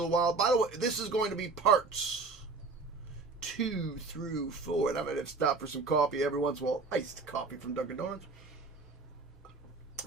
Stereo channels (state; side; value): quieter; left; 4.1 dB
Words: while. By the way, this is going to be parts 2 through 4. And I might have to stop for some coffee every once in a while. Iced coffee from Dunkin' Donuts.